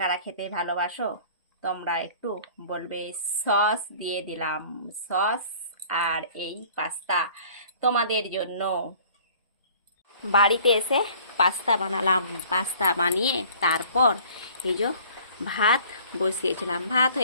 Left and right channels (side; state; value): both; inverted; correlation -0.51